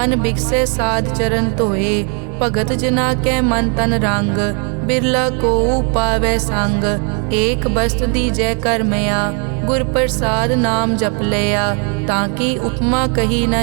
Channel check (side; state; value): left; quieter; 37.9 dB